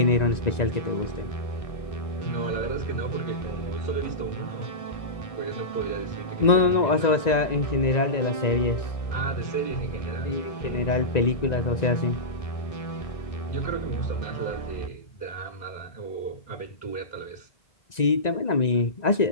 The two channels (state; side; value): late; right; 1.9 ms